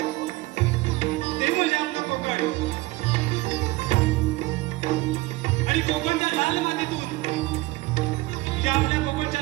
ते म्हणजे आपलं कोकण. आणि कोकणच्या लाल मातीतून, या आपल्या कोकणच्या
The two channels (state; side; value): quieter; left; 20.4 dB